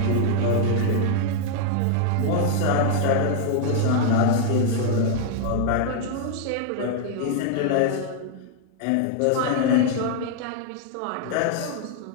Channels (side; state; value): both; different; correlation 0.00